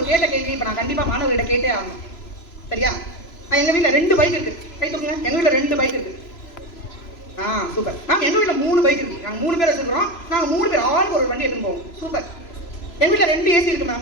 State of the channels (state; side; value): late; right; 3.0 ms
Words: கேட்ட கேள்வி இப்ப நான் கண்டிப்பா மாணவர்கிட்ட கேட்டே ஆகணும். சரியா? எங்க வீட்டுல 2 பைக் இருக்கு. கை தூக்குங்க. எங்க வீட்டுல 2 பைக் இருக்கு. சூப்பர். நாங்க எங்க வீட்டுல 3 பைக் இருக்கு. நாங்க 3 பேர் வச்சிருக்கிறோம். நாங்க 3 பேர் ஆளுக்கு ஒரு வண்டி எடுத்துட்டு போவோம். சூப்பர். எங்க வீட்டுல 2 ஏசி இருக்கு